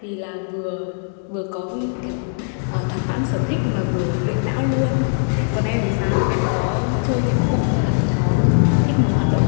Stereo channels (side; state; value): right; silent; 65 dB below the other